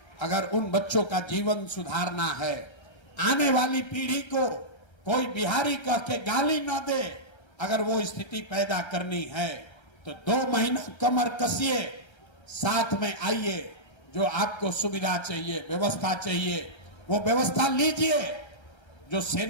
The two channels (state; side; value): late; right; 1.3 ms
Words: अगर उन बच्चों का जीवन सुधारना है, आने वाली पीढ़ी को कोई बिहारी कह के गाली ना दे, अगर वो स्थिति पैदा करनी है तो 2 महीना कमर कसिए, साथ में आइए, जो आपको सुविधा चाहिए, व्यवस्था चाहिए, वो व्यवस्था लीजिए। जो